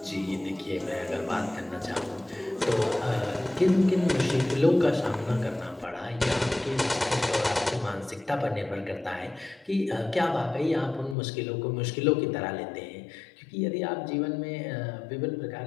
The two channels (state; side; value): drops out; right; at 11.2 s